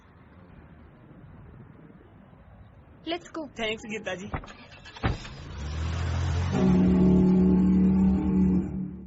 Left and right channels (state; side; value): identical; both; correlation 1.00